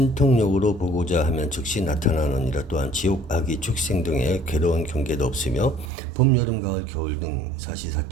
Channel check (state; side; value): drops out; left; at 5.9 s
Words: 보고자 하면 즉시 나타나느니라. 또한 지옥, 악이, 축생 등의 괴로운 경계도 없으며 봄, 여름, 가을, 겨울 등